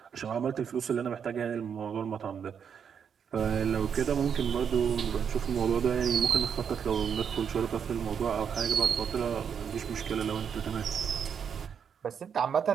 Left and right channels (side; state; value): left; quieter; 7.4 dB